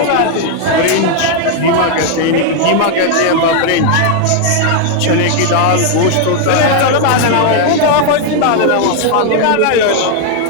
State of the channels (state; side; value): different; both; correlation 0.00